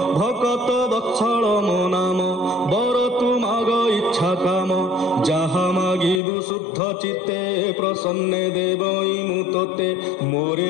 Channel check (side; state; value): right; drops out; at 6.2 s